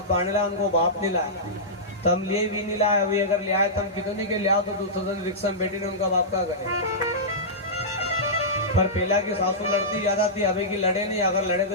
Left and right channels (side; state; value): both; normal; correlation -0.15